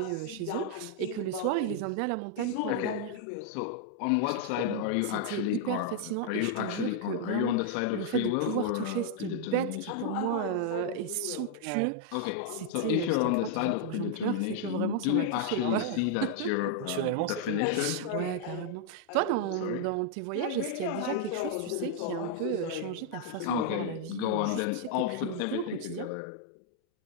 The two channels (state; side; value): different; both; correlation -0.01